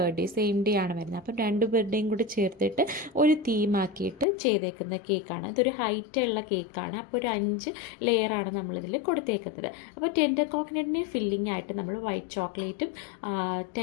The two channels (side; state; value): right; drops out; at 4.2 s